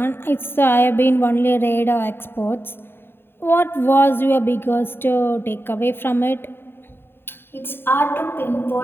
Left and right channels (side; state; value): right; late; 0.11 ms